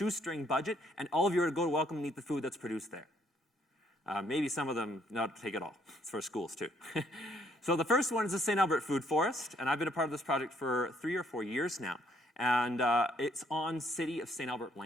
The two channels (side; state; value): both; normal; correlation 0.67